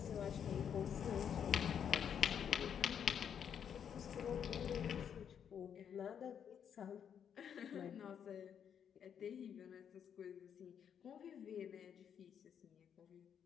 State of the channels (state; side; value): quieter; right; 8.2 dB